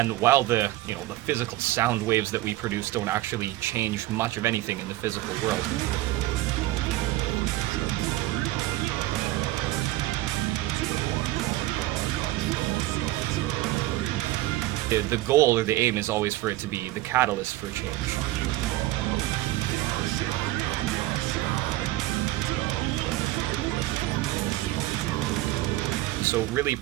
while the physical sound waves that we produce don't actually change much of anything in the physical world, the goal or the aim is always for it to be the catalyst for change. So really,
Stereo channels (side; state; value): left; quieter; 16.9 dB